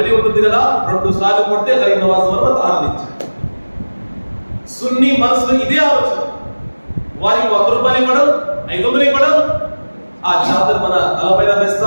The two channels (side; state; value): both; inverted; correlation -1.00